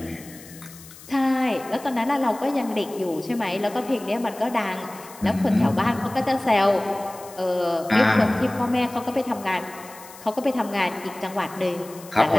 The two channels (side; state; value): left; noise; hiss, 19 dB below the sound